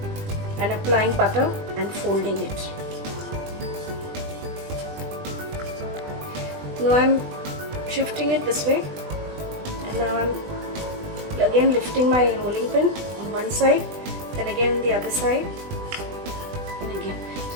and applying butter and folding it. Now I am shifting it this way, and now I am again lifting my rolling pin on one side, then again the other side, and again.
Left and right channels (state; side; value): late; left; 20 ms